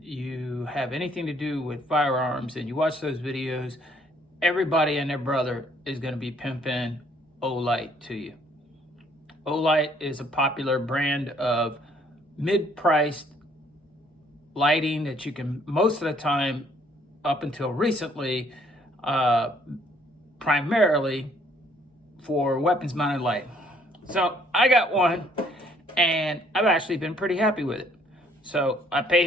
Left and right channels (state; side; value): normal; both; correlation 0.64